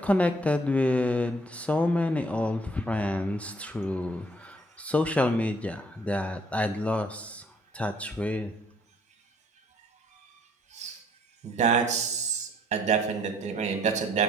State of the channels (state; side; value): normal; both; correlation 0.63